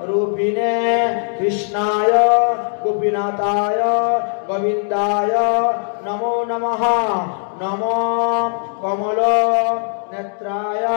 রূপিণে কৃষ্ণায় গোপীনাথায় গোবিন্দায় নমো নমঃ। নমো কমল নেত্রায়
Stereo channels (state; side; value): silent; right; 67 dB below the other